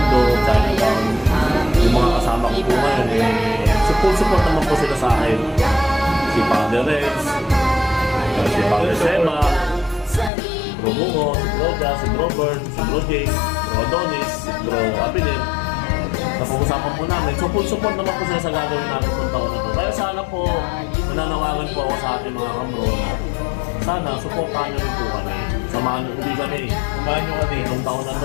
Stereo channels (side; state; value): right; drops out; at 10.3 s